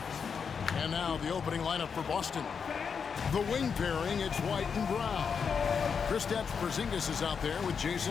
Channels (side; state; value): right; quieter; 6.2 dB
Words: And now the opening lineup for Boston. The wing pairing, it's White and Brown. Kristaps Porzingis is out there with